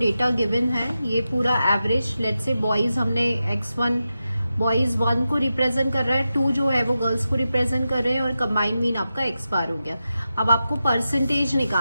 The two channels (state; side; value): inverted; both; correlation -0.90